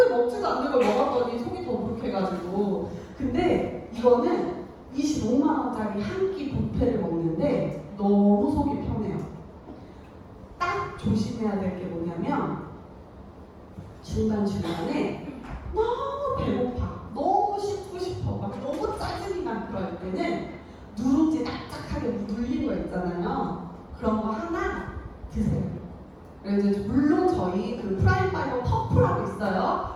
먹지도 않는 걸 먹었더니 속이 더부룩해가지고. 근데 이거는 25만 원짜리 한 끼 뷔페를 먹는데 너무 속이 편해요. 딱 조심해야 될 게 뭐냐면 중간중간에 너무 배고파, 너무 씹고 싶어, 막 너무 짜증이 나 그럴 때는 누룽지 납작하게 눌린 거 있잖아요. 그런 거 하나 드세요. 그래서 물론 저희 그 프라임 파이버 퍼프라고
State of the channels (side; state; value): both; identical; correlation 1.00